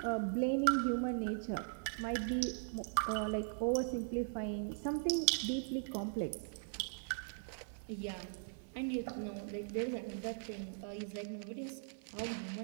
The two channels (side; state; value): left; silent; digital silence